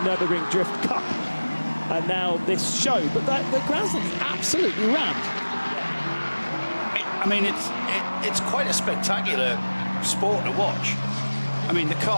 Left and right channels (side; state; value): both; inverted; correlation -1.00